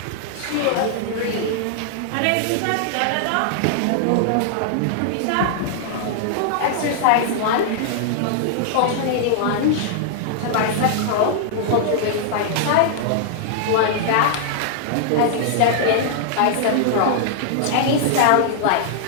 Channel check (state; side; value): different; both; correlation -0.01